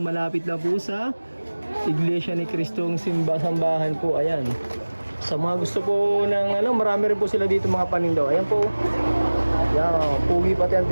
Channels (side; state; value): both; inverted; correlation -1.00